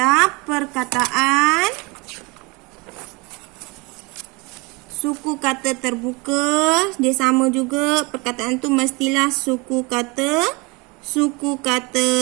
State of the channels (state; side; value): quieter; left; 27.0 dB